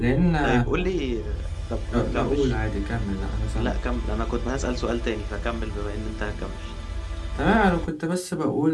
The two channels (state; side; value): identical; both; correlation 1.00